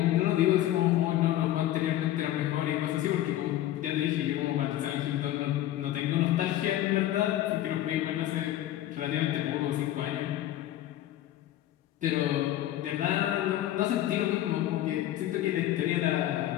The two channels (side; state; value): right; quieter; 13.5 dB